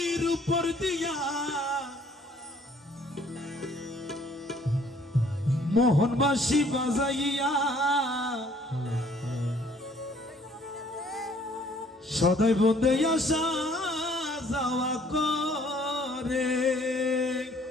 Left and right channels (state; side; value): normal; both; correlation 0.59